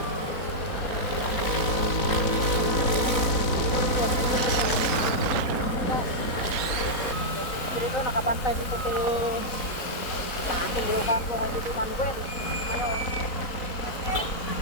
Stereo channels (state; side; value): late; right; 4.0 ms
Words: Dito nakabantay dito si Takil yung kampo kay Dito Manuel ngayon.